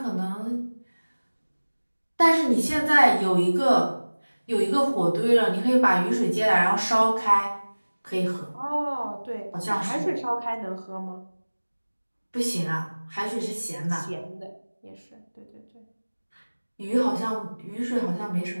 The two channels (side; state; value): both; inverted; correlation -1.00